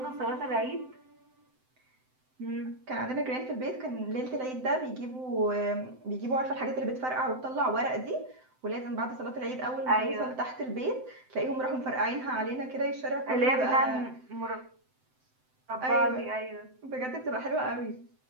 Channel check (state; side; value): late; left; 7.8 ms